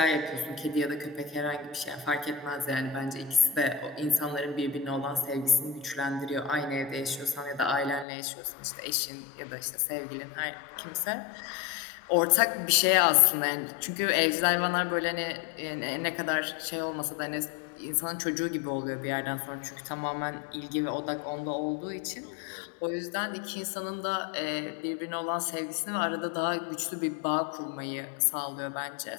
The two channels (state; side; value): drops out; right; at 8.1 s